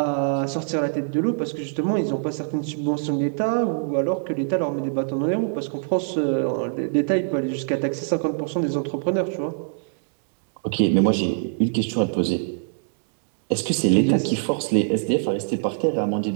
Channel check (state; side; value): silent; left; digital silence